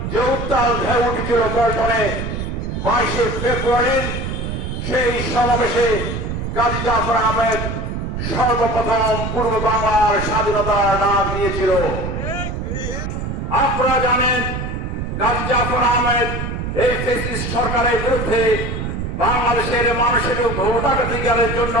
যে উত্তাল ঢেউ উঠেছিল পল্টনে 22 ফেব্রুয়ারির সেই সমাবেশে কাজী জাফর আহমেদ সর্বপ্রথম পূর্ব বাংলার স্বাধীনতার ডাক দিয়েছিল। আপনারা জানেন কাজী জাফর আহমেদ এই ফ্যাসিস্ট সরকারের বিরুদ্ধে বাংলাদেশের মানুষের ভোটাধিকারের জন্য,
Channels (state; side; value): noise; right; rumble, 4 dB below the sound